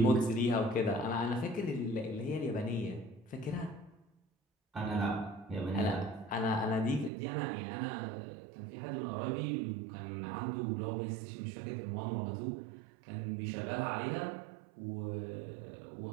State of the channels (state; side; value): drops out; left; at 7.1 s